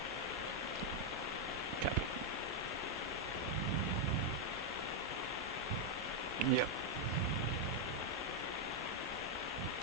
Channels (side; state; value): both; normal; correlation 0.00